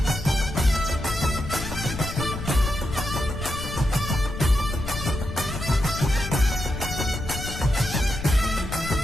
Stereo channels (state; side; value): noise; left; rumble, 7 dB below the sound